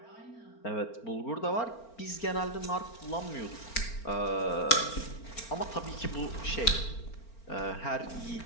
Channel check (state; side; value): late; right; 4.4 ms